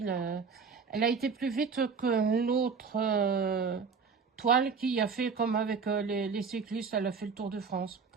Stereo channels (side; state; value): left; quieter; 5.4 dB